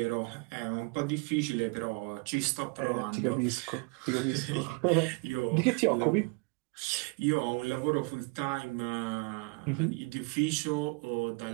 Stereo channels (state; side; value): quieter; left; 30.0 dB